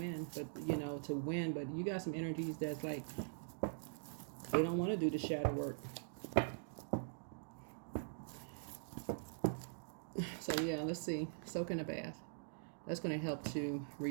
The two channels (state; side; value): silent; left; digital silence